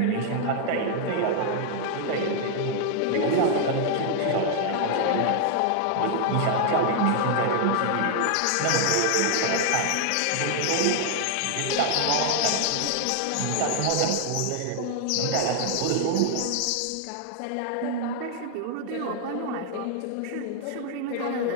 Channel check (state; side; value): different; both; correlation 0.00